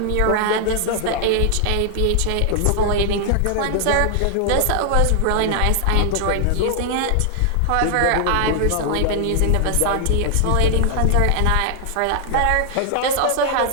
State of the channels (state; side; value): different; both; correlation 0.00